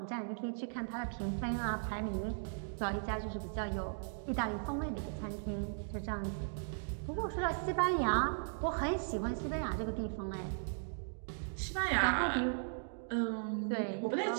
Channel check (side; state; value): left; silent; digital silence